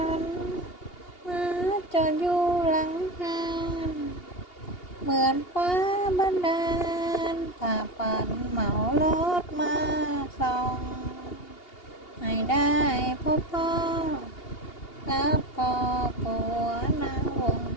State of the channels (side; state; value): right; late; 2.8 ms